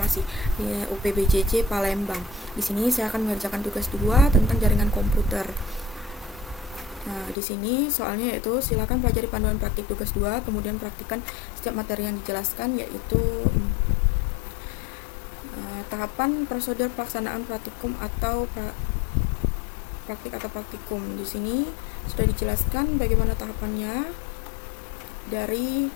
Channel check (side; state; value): right; drops out; at 7.4 s